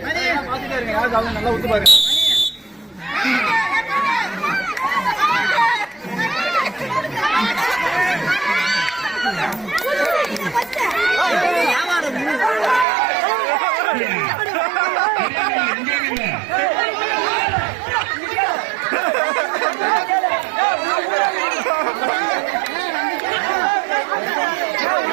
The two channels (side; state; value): left; drops out; at 12.9 s